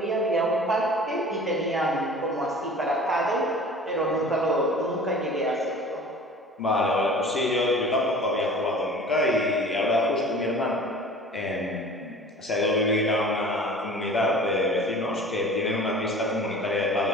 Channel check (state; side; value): normal; both; correlation 0.43